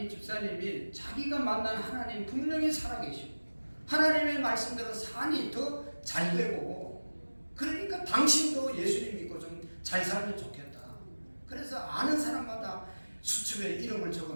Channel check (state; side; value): inverted; both; correlation -1.00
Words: 집사님이 자기가 만난 하나님 분명히 살아계시고 하나님의 말씀대로 산이 더 잘 되고 그러니까 당신도 예수님 믿고 좀 잘 살면 좋겠다. 그래서 아는 사람마다 수첩에 이름을